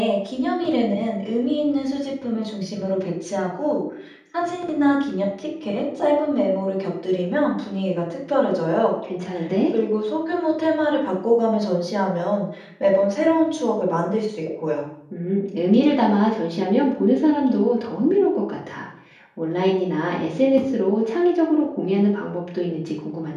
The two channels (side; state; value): both; identical; correlation 1.00